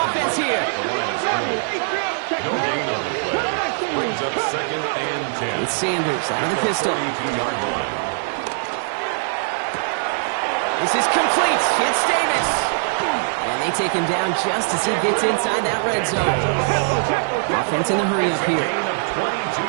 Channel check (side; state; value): left; silent; 65 dB below the other